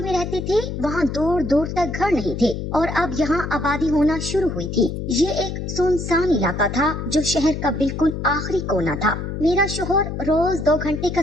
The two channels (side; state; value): left; noise; hum, 5 dB below the sound